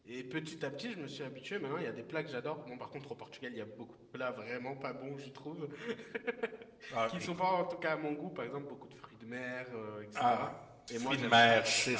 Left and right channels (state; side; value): identical; both; correlation 1.00